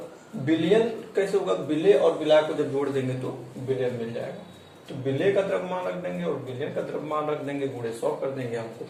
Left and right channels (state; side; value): identical; both; correlation 1.00